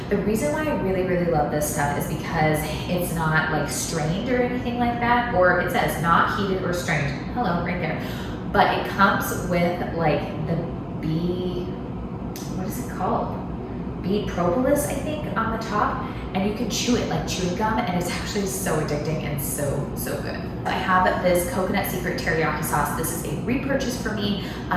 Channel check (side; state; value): both; identical; correlation 1.00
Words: The reason why I really, really love this stuff is because it's not like strained or anything like that, or it says not heated or strained. Hello, right there. But it comes with like the bee, what is it called? Bee propolis, I think, on the top. And you can chew it like chewing gum, and it's actually so addicting and so good. I have this Coconut Secret Teriyaki Sauce. This is a repurchase for me.